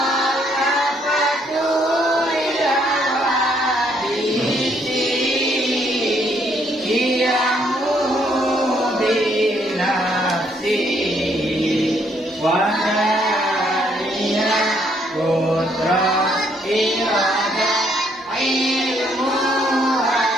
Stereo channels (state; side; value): normal; both; correlation 0.70